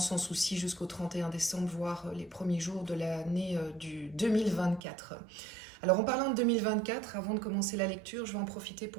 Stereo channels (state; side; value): drops out; left; at 4.8 s